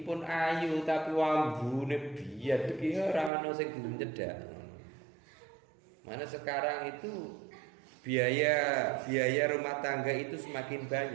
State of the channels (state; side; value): drops out; left; at 3.3 s